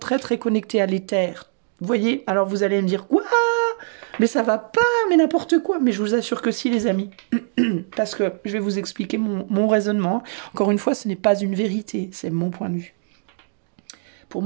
très connectés à l'éther. Vous voyez? Alors, vous allez me dire, quoi? Mais ça va pas, mais n'importe quoi. Mais je vous assure que si, les amis. Parce que je vais vous expliquer mon raisonnement. Encore une fois, ce n'est pas une vérité, c'est mon point de vue. Pour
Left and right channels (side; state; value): left; silent; digital silence